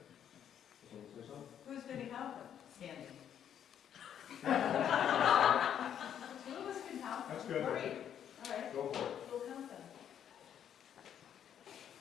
Someone say something? Who's going to help them? Standing. Who was going to help them? That's good. Great. All right, Go for it. we'll count them.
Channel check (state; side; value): quieter; right; 9.4 dB